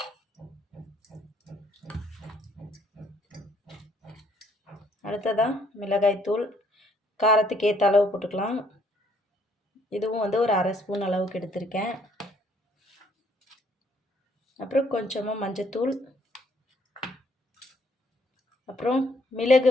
அடுத்ததாக மிளகாய்த்தூள் காரத்துக்கு ஏற்ற அளவு போட்டுக்கலாம். இதுவும் வந்து ஒரு அரை ஸ்பூன் அளவுக்கு எடுத்திருக்கேன். அப்புறம் கொஞ்சமாக மஞ்சத்தூள், அப்புறம் மிளகு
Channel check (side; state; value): both; normal; correlation 0.66